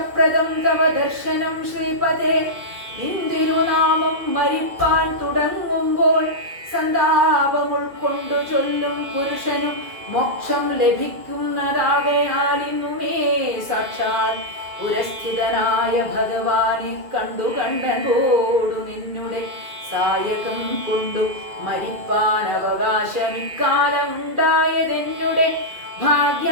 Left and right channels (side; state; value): left; late; 2.4 ms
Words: തവ ദർശനം ശ്രീപദേ ഇന്ദിരുനാമം മരിപ്പാൻ തുടങ്ങുമ്പോൾ സന്താപം ഉൾക്കൊണ്ടു ചൊല്ലും പുരുഷനും മോക്ഷം ലഭിക്കുന്നതാകയാൽ ഇന്നുമേ സാക്ഷാൽ പുരസ്ഥിതനായ ഭഗവാനെ കണ്ടു കണ്ടോടു നിന്നുടെ സായകം കൊണ്ടു മരിപ്പാൻ അവകാശം ഇക്കാലം ഉണ്ടായതെന്നുടെ